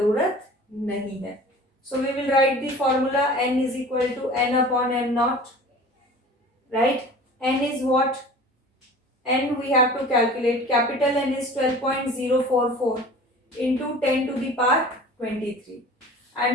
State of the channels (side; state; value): both; normal; correlation 0.42